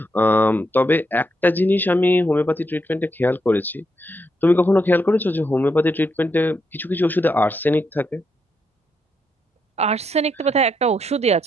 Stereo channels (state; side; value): normal; both; correlation 0.80